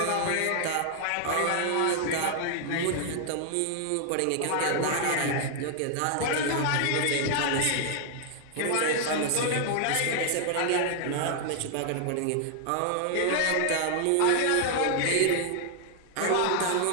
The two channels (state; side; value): different; both; correlation 0.00